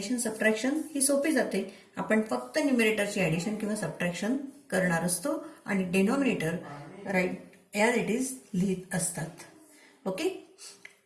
सबट्रॅक्शन ही सोपी जाते. आपण फक्त न्यूमरेटरची ॲडिशन किंवा सबट्रॅक्शन करणार असतो आणि denominator right as it is लिहित असतात. ओके.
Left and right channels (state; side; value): identical; both; correlation 1.00